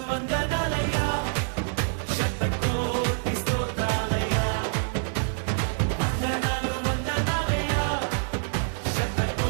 వందనాలయ్యా, శతకోటి స్తోత్రాలయ్యా. వందనాలు వందనాలయ్యా,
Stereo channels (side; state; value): left; silent; digital silence